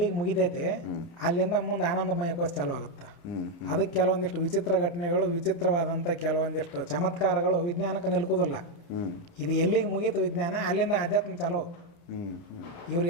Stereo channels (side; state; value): right; late; 29 ms